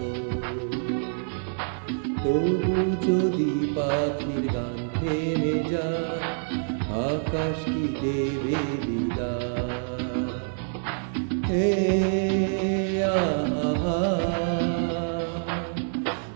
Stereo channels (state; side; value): silent; left; digital silence